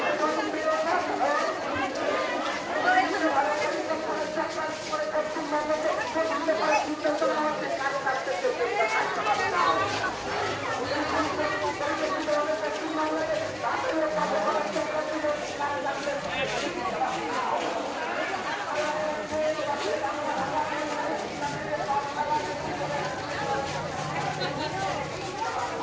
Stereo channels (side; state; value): both; identical; correlation 1.00